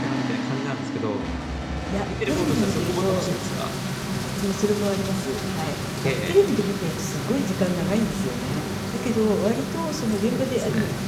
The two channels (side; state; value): both; identical; correlation 1.00